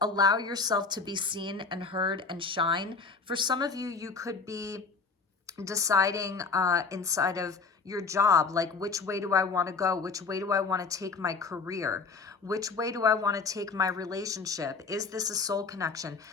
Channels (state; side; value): quieter; right; 4.6 dB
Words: allow yourself to be seen and heard and shine. For some of you, you could be deciding inside of your job, like which way do I want to go? Which way do I want to take my career? Which way do I want to take my relationship? Is this a soul connection?